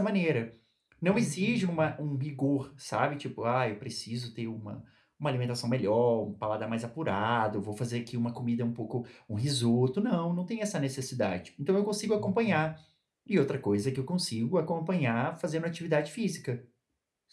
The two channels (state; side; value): identical; both; correlation 1.00